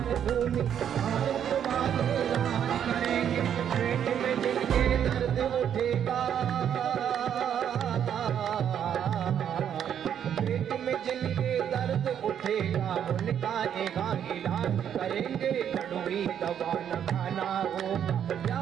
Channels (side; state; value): left; quieter; 9.1 dB